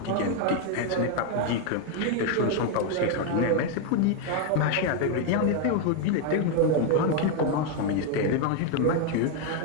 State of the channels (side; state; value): both; different; correlation 0.01